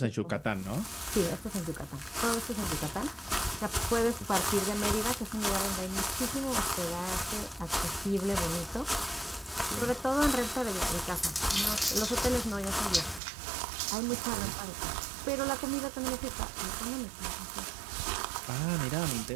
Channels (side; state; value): left; drops out; at 13.2 s